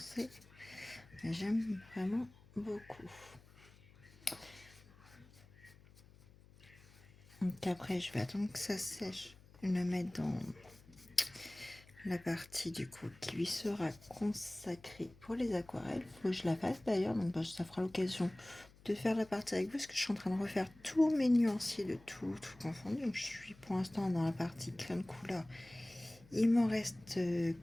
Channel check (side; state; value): left; noise; hum, 24 dB below the sound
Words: mais j'aime vraiment beaucoup. Donc après, je vais attendre que ça sèche. Je vais le mettre dans la partie du coup qui lui sera consacrée pour les aquarelles. Faut que je la fasse d'ailleurs, donc ça fera l'occasion de faire la partie avec vous, parce que je suis en train de refaire tous mes nuanciers de tout confondu. Donc je suis pour l'instant dans la partie crème couleur. Il m'en reste